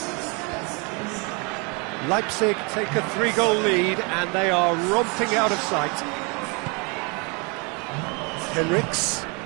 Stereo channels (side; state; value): left; quieter; 31.3 dB